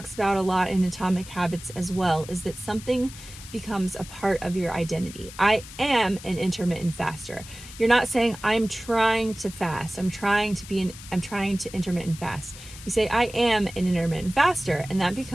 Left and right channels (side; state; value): left; noise; hiss, 16 dB below the sound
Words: about a lot in Atomic Habits as well, is that something becomes a part of your identity. I am an intermittent faster. You're not saying I'm trying to fast. I'm trying to intermittent fast. You say I am an intermittent faster, and that